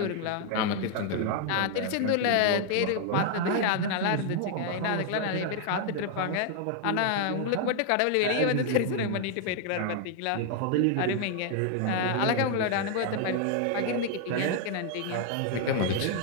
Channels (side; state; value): both; different; correlation 0.00